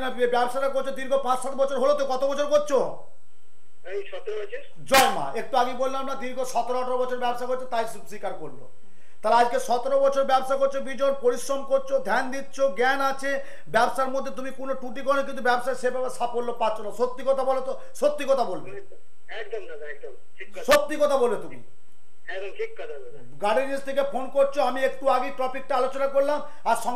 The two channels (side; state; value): both; identical; correlation 1.00